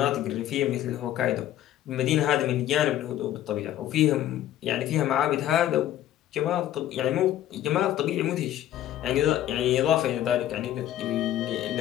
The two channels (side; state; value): right; quieter; 12.4 dB